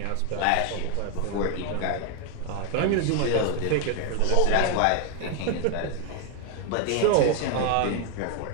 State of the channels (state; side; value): different; both; correlation 0.01